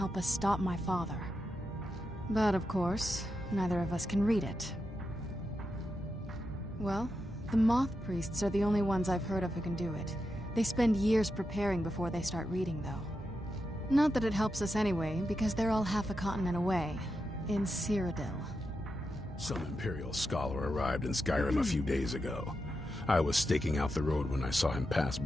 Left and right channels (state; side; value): normal; both; correlation 0.87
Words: us stop my father. But of course, neither of us can read it. Well, the Moth Priests are the only ones I've heard of who can do it. They spend years preparing before they start reading, though. Not that it helps us anyway, because they're all half a continent away, in Cyrodiil. Some Imperial scholar arrived in Skyrim a few days ago. I was staking out the road when I saw him pass